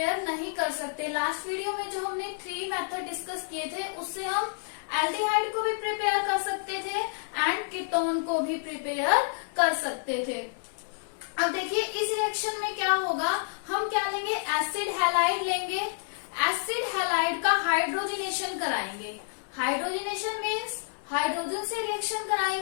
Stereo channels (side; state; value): right; silent; digital silence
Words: नहीं कर सकते. लास्ट वीडियो में जो हमने 3 मेथड डिस्कस किए थे, उससे हम एल्डिहाइड को भी प्रिपेयर कर सकते थे एंड कीटोन को भी प्रिपेयर कर सकते थे. अब देखिए इस रिएक्शन में क्या होगा. हम क्या लेंगे, एसिड हैलाइड लेंगे. एसिड हैलाइड का हाइड्रोजिनेशन कराएंगे. हाइड्रोजिनेशन मीन्स हाइड्रोजन से रिएक्शन